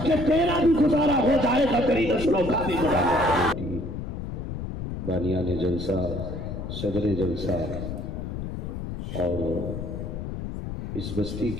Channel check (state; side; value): noise; left; rumble, 6 dB below the sound